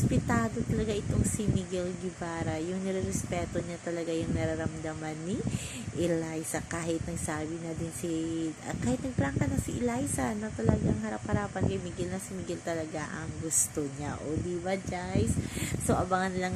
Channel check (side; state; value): both; identical; correlation 1.00